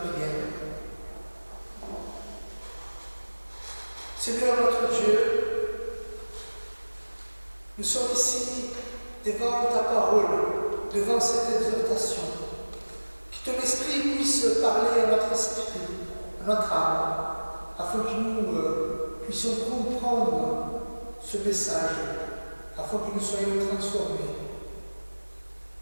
Seigneur notre Dieu, nous sommes ici devant ta parole, devant cette exhortation. Que ton esprit puisse parler à notre esprit, à notre âme, afin que nous puissions comprendre ce message, afin que nous soyons transformés.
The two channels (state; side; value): inverted; both; correlation -1.00